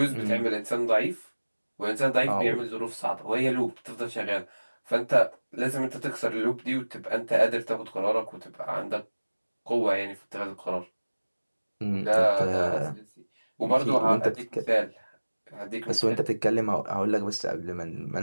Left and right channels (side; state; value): both; inverted; correlation -1.00